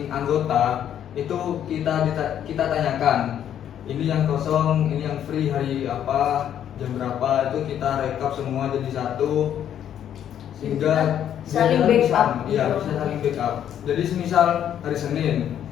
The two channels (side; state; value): right; quieter; 10.0 dB